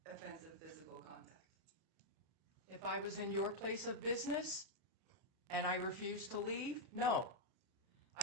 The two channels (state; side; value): late; left; 31 ms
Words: offensive physical contact? If I was in your place of business and I refused to leave, no.